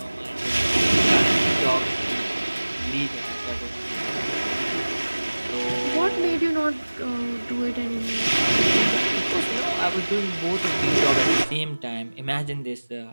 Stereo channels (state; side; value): inverted; both; correlation -1.00